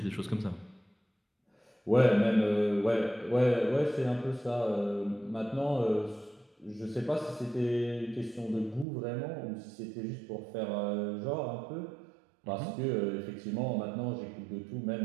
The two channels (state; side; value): drops out; left; at 8.8 s